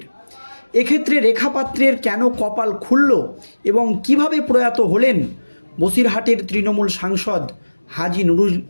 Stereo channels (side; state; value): both; inverted; correlation -1.00